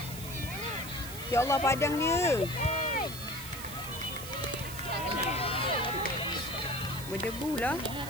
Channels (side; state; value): right; noise; hiss, 11 dB below the sound